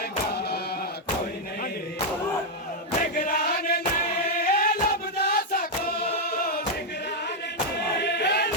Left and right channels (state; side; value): normal; both; correlation -0.01